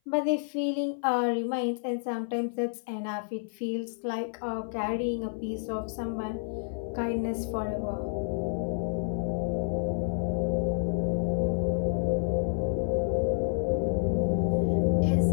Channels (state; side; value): silent; right; 57 dB below the other